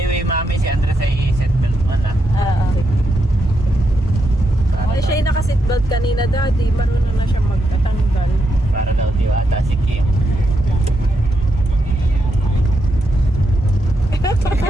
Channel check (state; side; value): normal; both; correlation 0.82